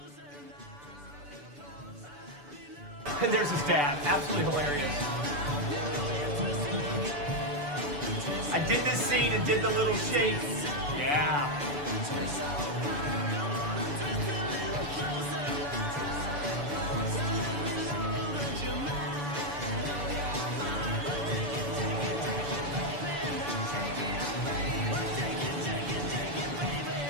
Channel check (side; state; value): left; late; 6.9 ms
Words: And there's his dad. Absolutely hilarious. I did this scene and did the little shake. Yeah.